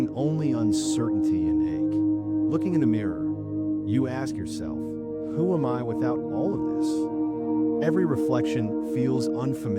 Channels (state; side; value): noise; right; hum, 27 dB below the sound